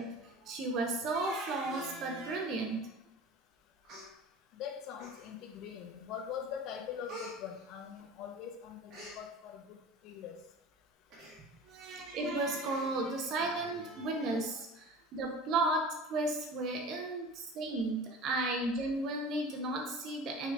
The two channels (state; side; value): normal; both; correlation 0.38